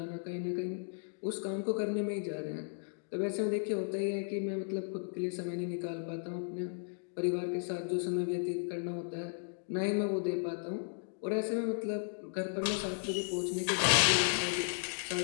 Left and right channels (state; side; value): silent; right; digital silence